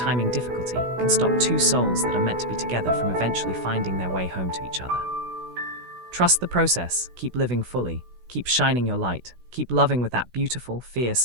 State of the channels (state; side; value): late; left; 16 ms